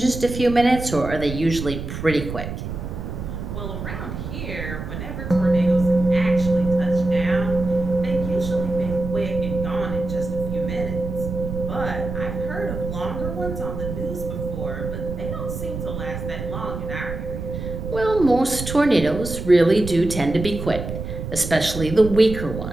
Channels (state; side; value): noise; right; rumble, 7 dB below the sound